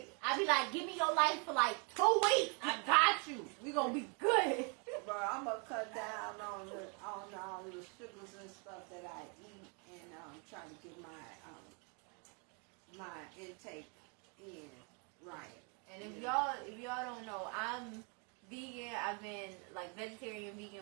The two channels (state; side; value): quieter; left; 35.6 dB